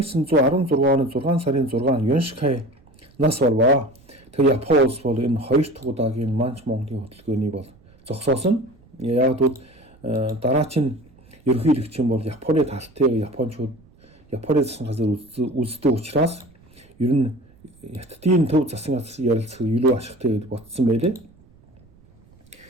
сарын 6 Юншкай нас болваа. Тэгээ Япон улс бол энэ хоёр дахь удаагийн Манч Монголын хөдөлгөөний бол зогсоосон. Яг бол дараач нь ерөнхийлөгч бол Японы талтыг Япончууд Японы засгийн газар үздэг учраас ер нь Хятадын төв засгийн газар ярилцах илүү ашигтай гэж бодсон байлээ.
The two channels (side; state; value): right; noise; rumble, 28 dB below the sound